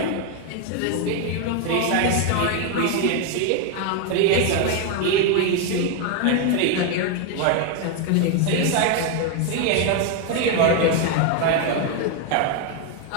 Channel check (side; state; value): both; different; correlation 0.01